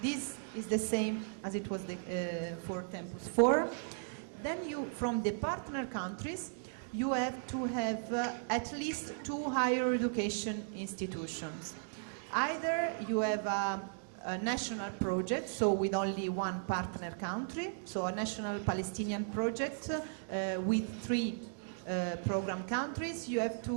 This is the same as it was for Tempus 4. Then you, from the partner countries, you have to have at least 2 higher education institutions. Either you have a national project, so with only 1 partner country, so a national Palestinian project with 3 program countries. You have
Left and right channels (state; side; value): silent; left; digital silence